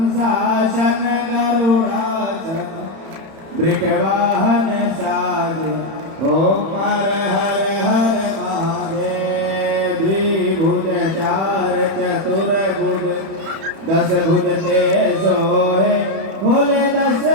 गरुड़ाशन वृषवाहन साज ओम हर हर हर महादेव द्विभुज चार चतुर्भुज दस भुज ते सोहे भोले दस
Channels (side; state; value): left; late; 31 ms